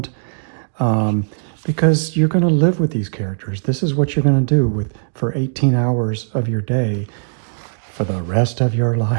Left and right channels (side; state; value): left; silent; digital silence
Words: because you're going to live with these characters. This is what you're going to do for 18 hours of your day for the rest of your